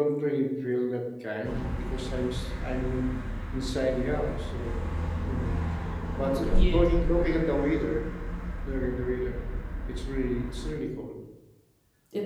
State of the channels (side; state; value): both; identical; correlation 1.00